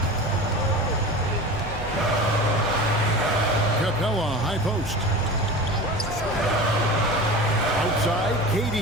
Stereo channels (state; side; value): noise; right; hum, 15 dB below the sound